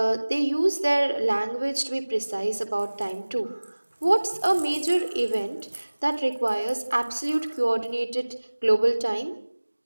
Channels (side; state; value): both; inverted; correlation -1.00